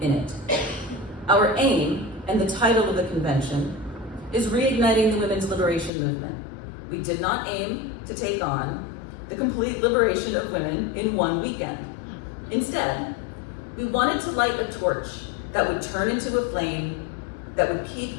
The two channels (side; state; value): right; drops out; at 5.9 s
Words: in it. Our aim, and the title of the convention, is reigniting the women's liberation movement. We did not aim to take on the complete liberation of women in one weekend. Instead, we wanted to light a torch that would turn into a flame that would